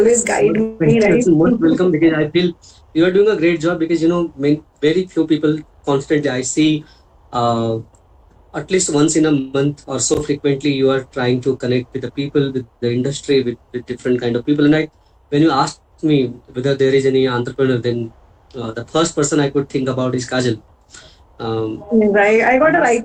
guide me, right? Most welcome, because I feel you are doing a great job, because very few people constantly I see at least once in a month or so frequently you are trying to connect with the people, with the industry, with different kind of people. And when you asked me whether there is any entrepreneur, then the first person I could think about is Kajal. I got a right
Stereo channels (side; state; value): both; identical; correlation 1.00